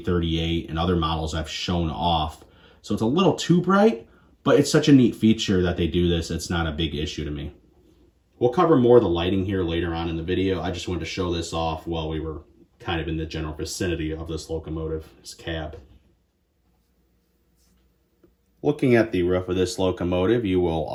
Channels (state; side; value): identical; both; correlation 1.00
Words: and other models I've shown off. So it's a little too bright, but it's such a neat feature that they do this. It's not a big issue to me. We'll cover more of the lighting here later on in the video. I just wanted to show this off while we were kind of in the general vicinity of this locomotive, this cab. Looking at the roof of this locomotive, you will